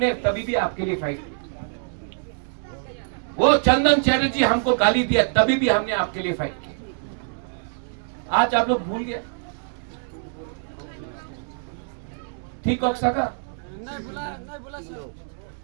तभी भी आपके लिए फाइट की। वो चंदन चैटर्जी हमको गाली दिया, तभी भी हमने आपके लिए फाइट की। आज आप लोग भूल गए? ठीक हो सका?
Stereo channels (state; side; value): silent; left; digital silence